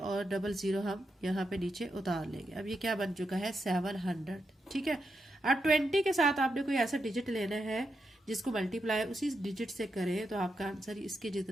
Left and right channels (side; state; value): both; normal; correlation 0.85